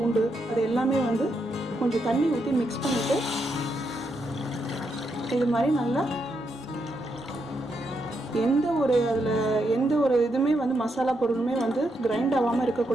அது எல்லாமே கொஞ்சம் தண்ணி ஊற்றி மிக்ஸ் பண்ணிவிட்டு இது மாதிரி நல்லா எந்த ஒரு இதுவுமே மசாலா பொருளுமே கிரைண்ட் ஆகாமல்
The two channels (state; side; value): normal; both; correlation 0.81